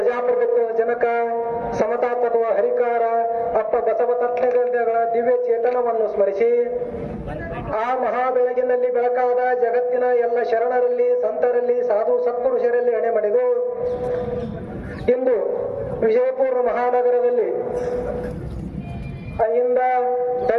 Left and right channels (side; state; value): both; identical; correlation 1.00